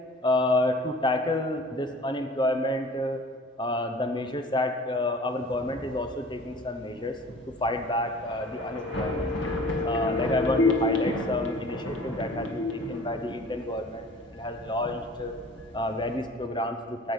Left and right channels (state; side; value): normal; both; correlation 0.46